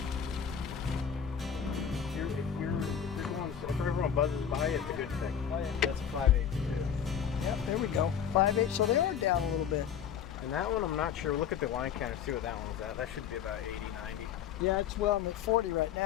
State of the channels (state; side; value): quieter; right; 8.4 dB